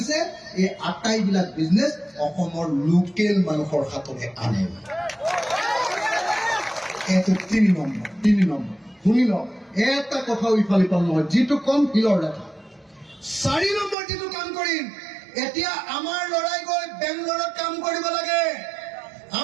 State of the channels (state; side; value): drops out; left; at 14.0 s